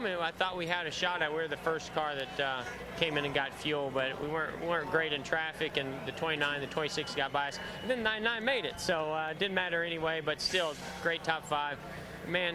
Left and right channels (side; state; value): both; identical; correlation 1.00